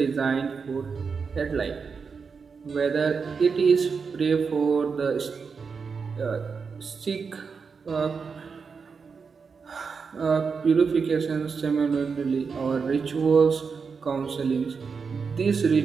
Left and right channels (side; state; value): left; quieter; 5.4 dB